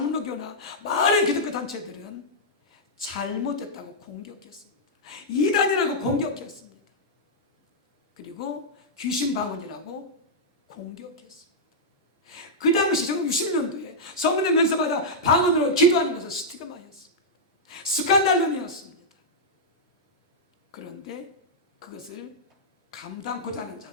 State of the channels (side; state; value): both; normal; correlation -0.08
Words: 많은 기독교 단체들은 잘못됐다고 공격했습니다. 이단이라고 공격했습니다. 그리고 귀신 방언이라고 공격했습니다. 그 당시 1960년도에 성령의 면서마다 방언으로 기도하는 것은 스티그마였습니다. 스칸달룸이었습니다. 그런데 그것을 감당코자 하는